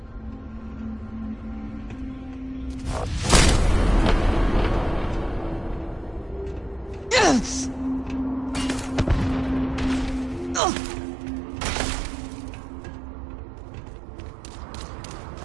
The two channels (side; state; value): left; drops out; at 10.6 s